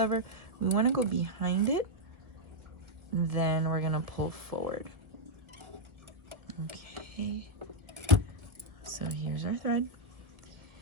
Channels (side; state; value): left; late; 1.0 ms